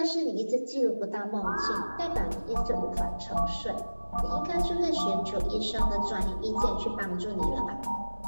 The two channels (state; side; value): inverted; both; correlation -1.00